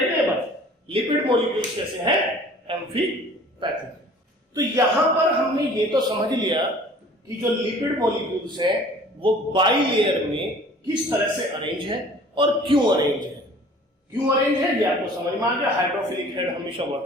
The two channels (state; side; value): normal; both; correlation 0.49